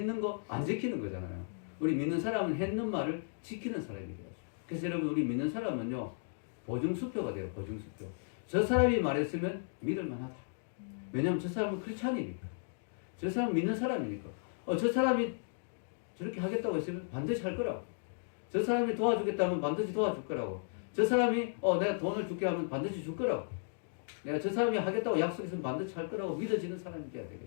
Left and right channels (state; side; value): silent; right; digital silence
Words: 거 안 지키는 거잖아요. 우리 믿는 사람은 했는 말을 지키는 사람이 돼요. 그래서 여러분, 우리 믿는 사람은요, 보증수표가 돼요. 보증수표. 저 사람이 말했으면 믿을 만하다. 왜냐하면 저 사람은 크리스찬이니까. 저 사람은 믿는 사람이니까. 저 사람이 저렇게 하겠다고 했으면 반드시 할 거라고. 저 사람이 도와주겠다면 반드시 도와줄 거라고. 저 사람이 내가 돈을 줄게 하면 반드시 줄 거라고. 내가 저 사람이 하겠다고 약속했으면 반드시 할 거라고 믿어지는 사람이 돼야